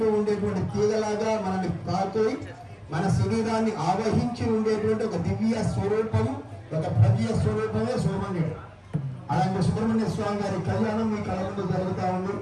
ఉండేటువంటి తీగలాగా మనల్ని తాకి మన శరీరాన్ని ఆవహించి ఉండేటువంటి ఒక దివ్య స్వరూపం, ఒక భవ్య స్వరూపమే సుబ్రహ్మణ్యుడు. అలాంటి సుబ్రహ్మణ్య స్వామి గారి కళ్యాణం మీ కళ ముందు జరుగుతూ ఉంది.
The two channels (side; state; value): both; identical; correlation 1.00